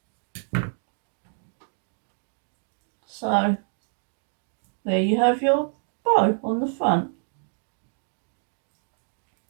So there you have your bow on the front.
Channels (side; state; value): left; silent; digital silence